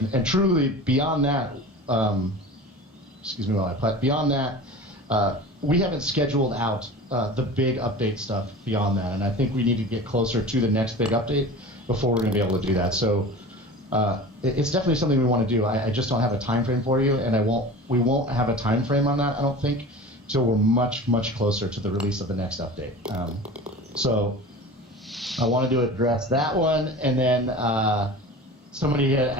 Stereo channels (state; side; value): normal; both; correlation 0.36